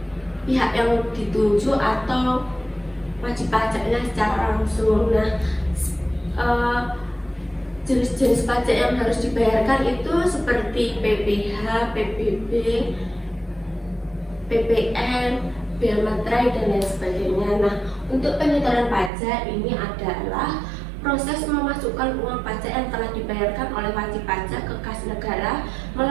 pihak yang dituju atau wajib pajaknya secara langsung. Nah, jenis-jenis pajak yang harus dibayarkan itu seperti PPh, PBB, PPN, bea materai, dan lain sebagainya. Nah, untuk penyetoran pajak ini adalah proses memasukkan uang pajak yang telah dibayarkan oleh wajib pajak ke kas negara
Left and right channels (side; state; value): left; drops out; at 19.1 s